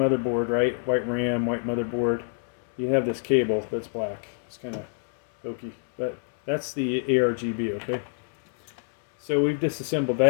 right? White RAM, white motherboard, you have this cable that's black. It's kind of hokey, but that's the ARGB, okay? So we've disassembled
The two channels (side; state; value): right; silent; 60 dB below the other